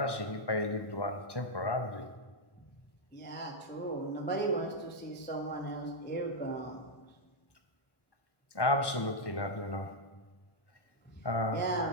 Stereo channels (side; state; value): right; late; 1.1 ms